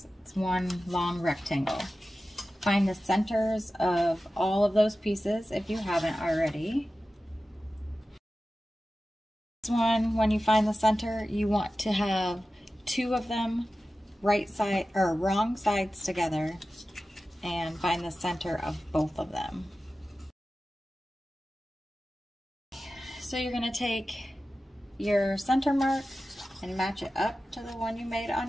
It's one long rectangle. find the centers of all of those pieces if you haven't already. This one, when you find the center, you want to have two of them right side or wrong sides together and find the center of both of them. So you're going to take your center mark and match it up to the one you made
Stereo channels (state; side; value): normal; both; correlation 0.94